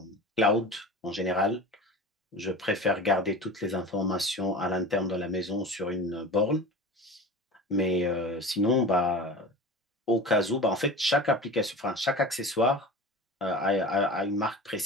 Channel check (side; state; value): both; normal; correlation 0.34